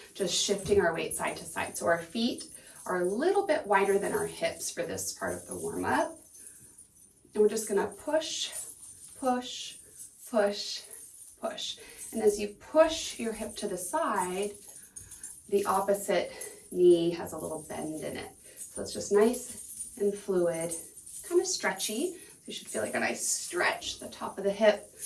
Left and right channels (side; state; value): both; identical; correlation 1.00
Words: just shifting our weight side to side. So our feet are a little bit wider than our hips for this part of the warm-up. And we're just going to push, push, push, push. And as you push your hip to the side, the opposite knee has a little bend in it. So it's just nice and fluid, kind of stretchy. So you should feel like a nice stretch, the top of the hip,